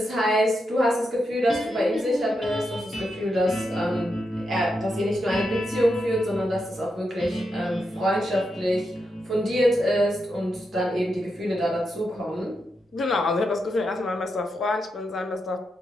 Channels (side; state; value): both; normal; correlation 0.85